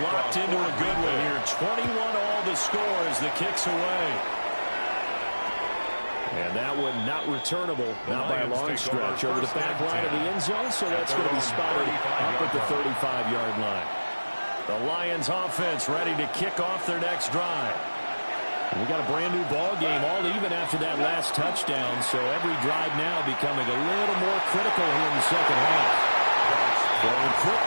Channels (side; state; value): both; inverted; correlation -1.00